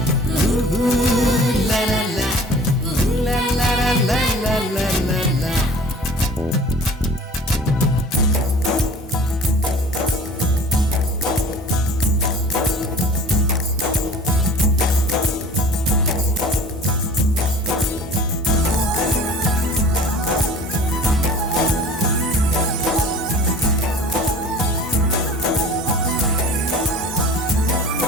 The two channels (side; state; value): both; normal; correlation 0.44